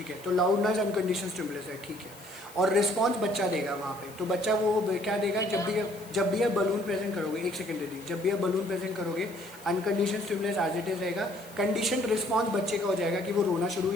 है। तो लाउड नॉइज अनकंडीशनल स्टिमुलस है, ठीक है। और रिस्पॉन्स बच्चा देगा वहाँ पे, तो बच्चा वो क्या देगा, जब भी आप बलून प्रेजेंट करोगे, एक सेकंड दे दीजिए, जब भी आप बलून प्रेजेंट करोगे unconditional stimulus as it is रहेगा, कंडीशन रिस्पॉन्स बच्चे का हो जाएगा कि वो रोना शुरू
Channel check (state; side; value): noise; left; hiss, 20 dB below the sound